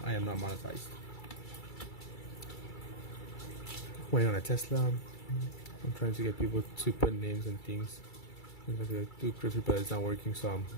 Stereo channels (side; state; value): right; late; 2.3 ms